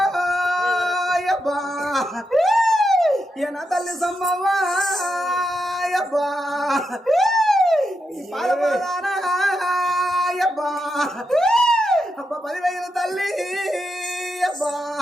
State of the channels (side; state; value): both; normal; correlation 0.85